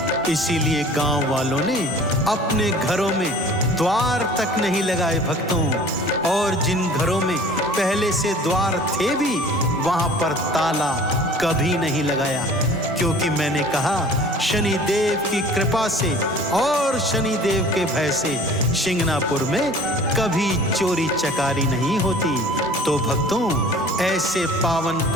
इसीलिए गांव वालों ने अपने घरों में द्वार तक नहीं लगाए भक्तों, और जिन घरों में पहले से द्वार थे भी वहां पर ताला कभी नहीं लगाया, क्योंकि मैंने कहा शनिदेव की कृपा से और शनिदेव के भय से शिंगनापुर में कभी चोरी चकारी नहीं होती। तो भक्तों, ऐसे पावन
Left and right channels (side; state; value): both; normal; correlation 0.47